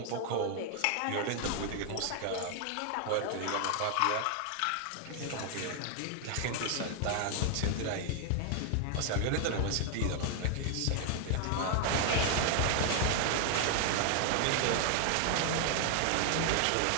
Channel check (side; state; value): both; different; correlation 0.00